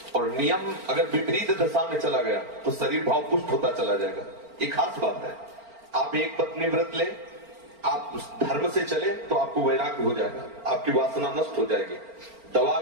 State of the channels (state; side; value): late; left; 4.4 ms